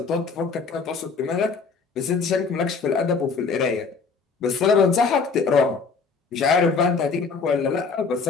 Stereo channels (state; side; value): quieter; right; 4.9 dB